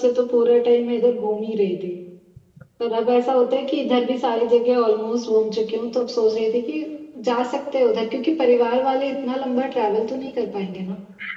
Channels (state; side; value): identical; both; correlation 1.00